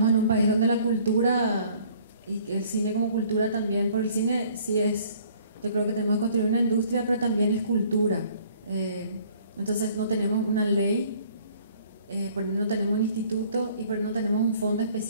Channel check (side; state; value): both; inverted; correlation -0.57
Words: en un país donde la cultura y el cine como cultura también, por el cine sí es, yo creo que tenemos que construir una industria, pero también es cultura. Entonces no tenemos una ley, no tenemos un instituto y no tenemos un fondo